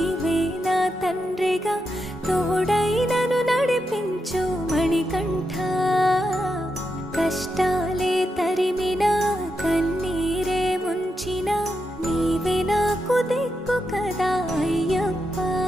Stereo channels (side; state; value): both; normal; correlation 0.85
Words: నా తండ్రిగా తోడైనను నడిపించు మణికంఠ. కష్టాలే తరిమినా కన్నీరే ముంచినా నీవే నాకు దిక్కు కదా అయ్యప్ప.